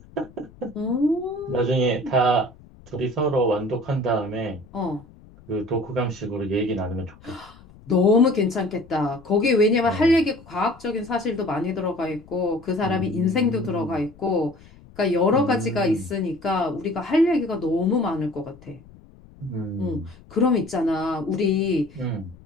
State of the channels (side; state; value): left; noise; rumble, 23 dB below the sound